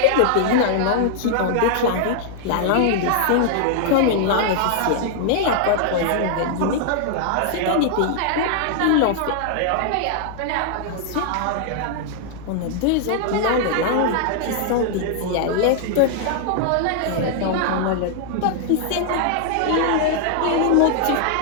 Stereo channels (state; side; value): different; both; correlation -0.01